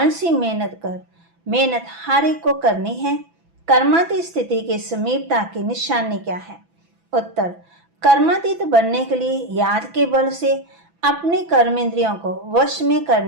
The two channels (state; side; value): late; left; 6.0 ms